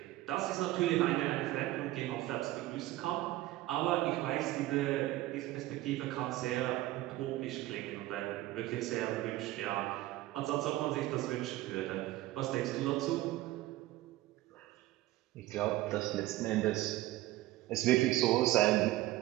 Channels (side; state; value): left; quieter; 16.7 dB